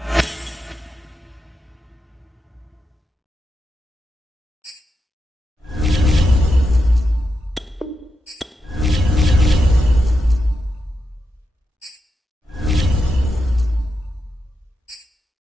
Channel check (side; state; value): both; normal; correlation 0.87